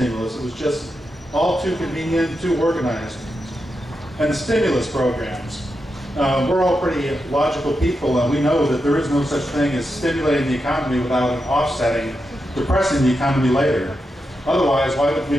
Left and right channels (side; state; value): both; normal; correlation 0.87